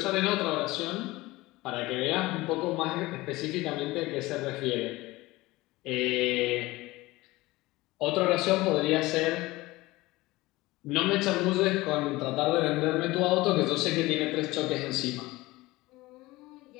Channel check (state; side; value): quieter; right; 19.9 dB